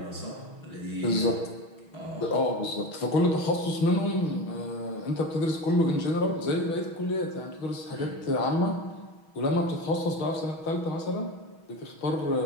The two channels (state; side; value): late; right; 6.3 ms